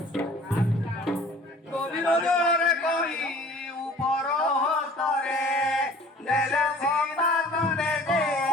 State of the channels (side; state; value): both; normal; correlation 0.49